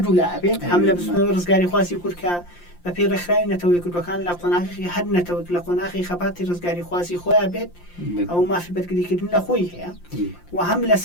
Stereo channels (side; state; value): right; late; 5.7 ms